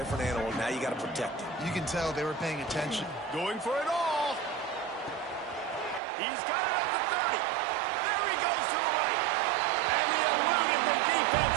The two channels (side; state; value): left; drops out; at 6.0 s